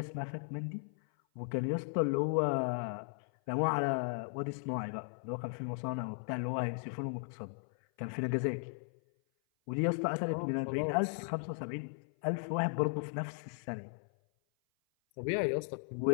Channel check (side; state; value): right; silent; 53 dB below the other